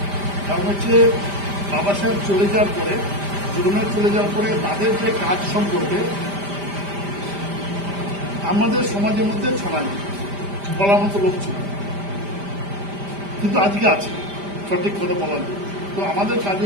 কারণ হচ্ছে বাবা সাহেব চলে যাওয়ার পরে, জীবনের চলে যাওয়ার পরে তাদের যে কাজ সম্পর্কে আমাদের সমাজের মধ্যে ছড়ায়নি, বলার মতো লোক ছিল, কিন্তু আজকে আছে সঠিক কথা বলার জন্য। তো আমাদের কাজ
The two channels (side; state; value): left; late; 5.0 ms